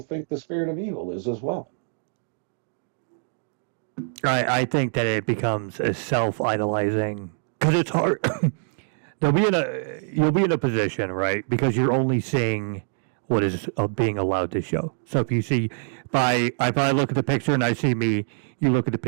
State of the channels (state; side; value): silent; left; digital silence